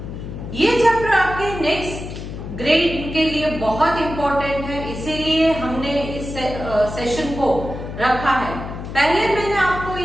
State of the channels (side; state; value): left; noise; hum, 9 dB below the sound